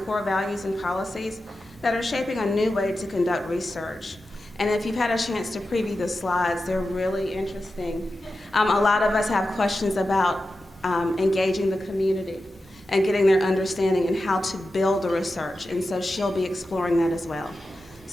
core values and policies that are shaping a new way to conduct research. And if you've had a chance to preview the slides, they're really interesting. A lot of us have questions about engaging the community and getting their understanding and how to build the research, and so she'll be exploring that as well.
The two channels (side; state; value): both; normal; correlation 0.92